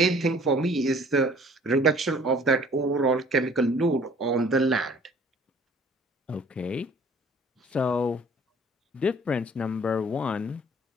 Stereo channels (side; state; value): both; normal; correlation 0.53